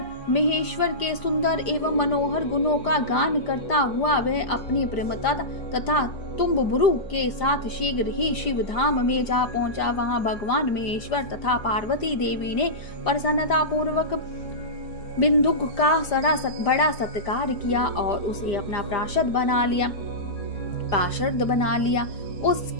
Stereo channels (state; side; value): late; right; 5.0 ms